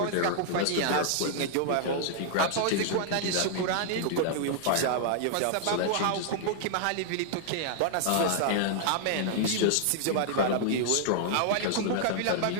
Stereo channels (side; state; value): both; different; correlation -0.01